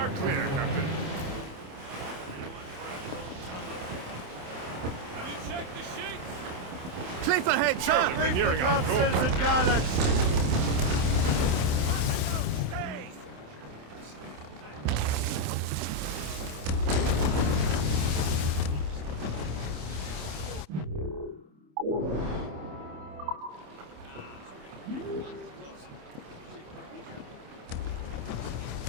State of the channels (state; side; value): late; left; 27 ms